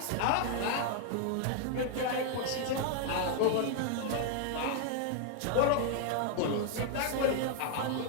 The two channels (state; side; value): different; both; correlation 0.00